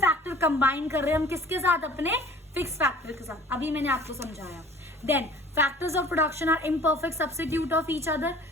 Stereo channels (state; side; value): normal; both; correlation 0.49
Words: combine कर रहे हैं हम किसके साथ, अपने फिक्स फैक्टर के साथ, अभी मैंने आपको समझाया। Then factors of production are imperfect substitute of each other,